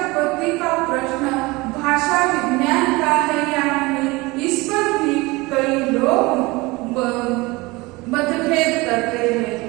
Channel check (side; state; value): left; quieter; 23.0 dB